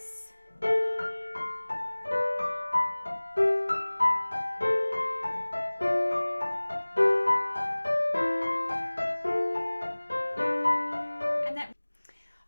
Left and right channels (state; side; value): inverted; both; correlation -1.00